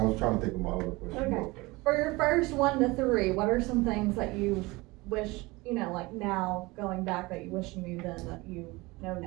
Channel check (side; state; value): left; quieter; 22.8 dB